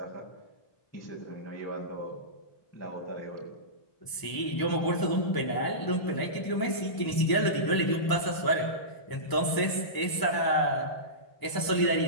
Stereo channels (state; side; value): late; right; 1.0 ms